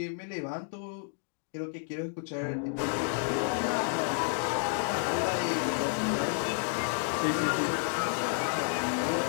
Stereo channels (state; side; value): silent; right; digital silence